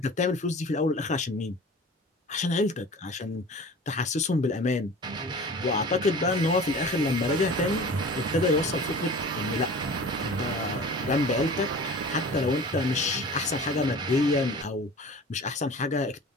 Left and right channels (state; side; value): normal; both; correlation 0.40